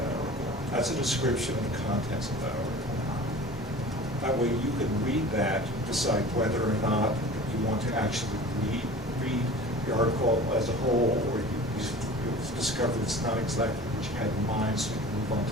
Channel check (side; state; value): both; normal; correlation 0.40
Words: article. That's a description of the contents of that article. That way you can read that, decide whether or not you want to actually read the article as a whole, or you've discovered it's not exactly what you had in mind, so you can move on